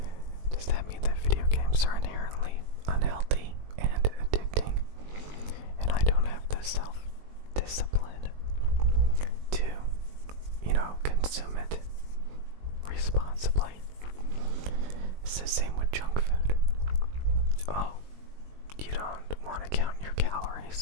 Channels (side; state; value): left; late; 20 ms